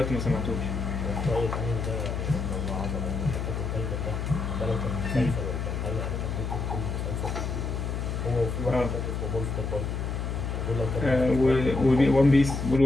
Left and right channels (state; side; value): noise; left; hum, 3 dB below the sound